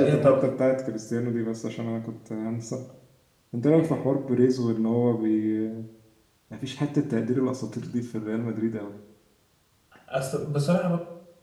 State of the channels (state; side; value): identical; both; correlation 1.00